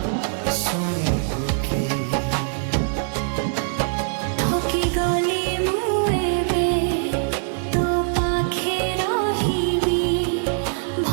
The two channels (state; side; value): silent; left; 64 dB below the other